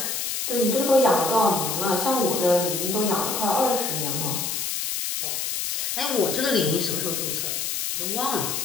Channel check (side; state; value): left; noise; hiss, 2 dB below the sound